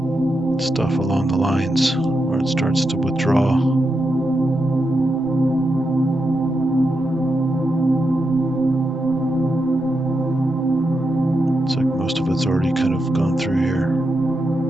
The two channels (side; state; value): both; normal; correlation 0.86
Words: stuff along the lines where it starts to withdraw. It's like most of it's already kind of gone through here.